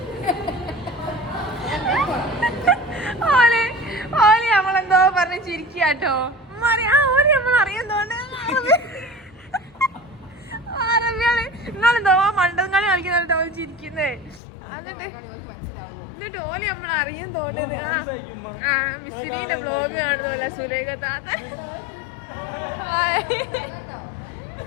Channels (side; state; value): right; drops out; at 14.4 s